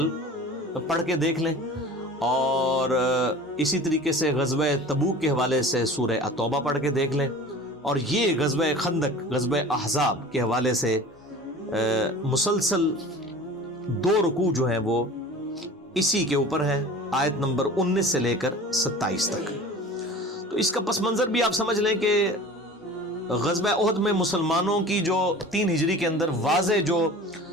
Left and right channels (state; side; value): normal; both; correlation 0.40